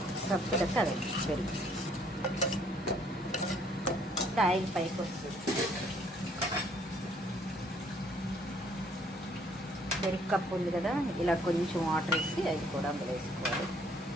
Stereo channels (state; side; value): normal; both; correlation 0.63